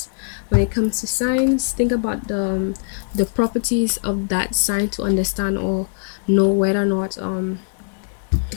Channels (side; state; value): right; silent; digital silence